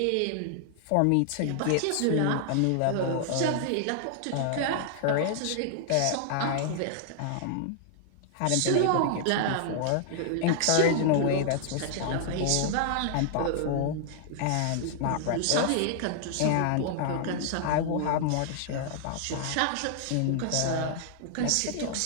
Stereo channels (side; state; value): both; different; correlation -0.01